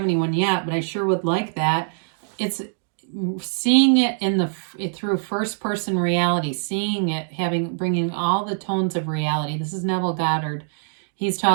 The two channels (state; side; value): silent; left; digital silence